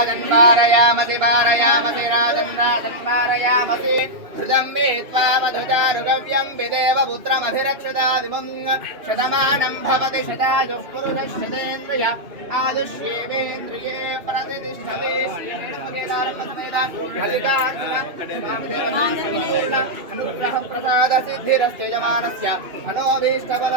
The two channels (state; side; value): late; left; 2.6 ms